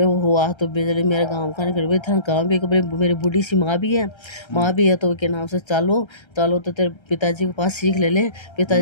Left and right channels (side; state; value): right; late; 1.3 ms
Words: वो हुआ तो बिजली मेरे गाँव का नहीं कर था गाँव भी मेरी बूढ़ी सी माँ भी है तो के नाम से चालो चालो तो तेरे पिताजी के पास सीख ले